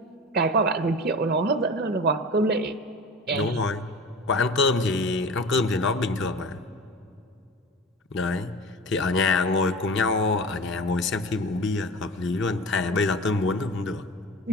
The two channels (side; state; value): both; normal; correlation 0.35